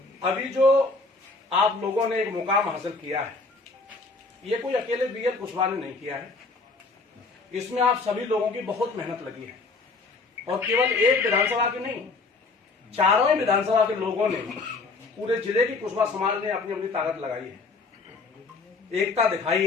अभी जो आप लोगों ने एक मुकाम हासिल किया है, ये कोई अकेले बीएल कुशवाहा ने नहीं किया है। इसमें आप सभी लोगों की बहुत मेहनत लगी है, और केवल एक विधानसभा की नहीं, चारों ही विधानसभा के लोगों ने, पूरे जिले की कुशवाहा समाज ने अपनी अपनी ताकत लगाई है, एकता दिखाई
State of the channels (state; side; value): quieter; right; 3.8 dB